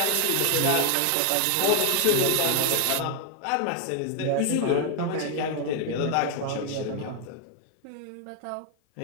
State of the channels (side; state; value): both; different; correlation 0.01